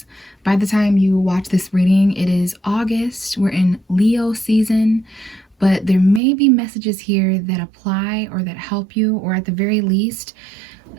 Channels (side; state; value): left; drops out; at 6.2 s